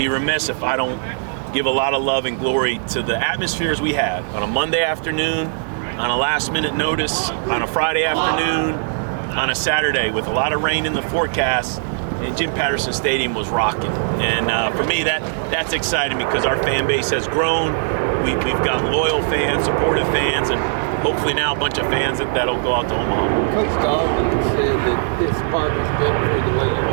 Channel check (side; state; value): left; silent; digital silence